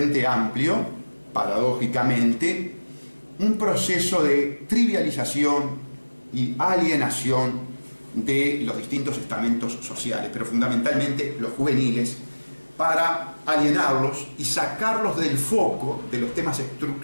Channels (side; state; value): both; inverted; correlation -1.00